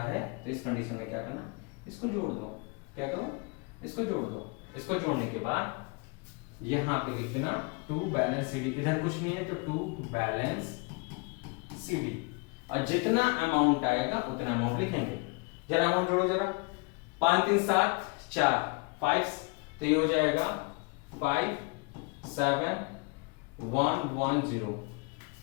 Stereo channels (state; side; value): quieter; right; 30.9 dB